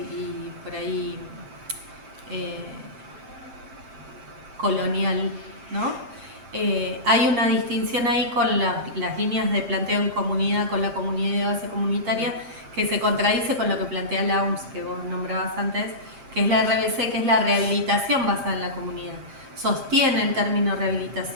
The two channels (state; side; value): late; left; 7.5 ms